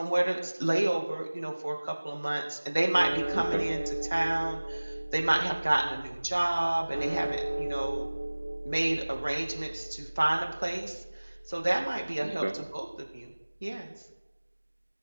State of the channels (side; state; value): both; inverted; correlation -1.00